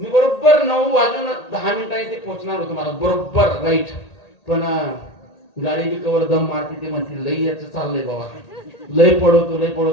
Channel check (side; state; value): right; late; 1.8 ms